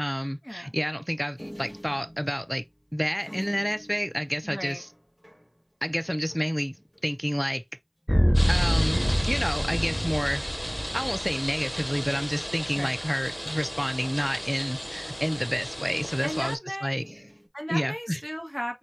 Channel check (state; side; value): identical; both; correlation 1.00